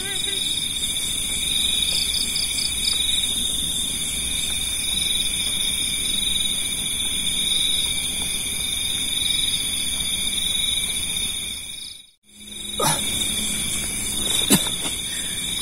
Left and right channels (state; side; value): normal; both; correlation 0.90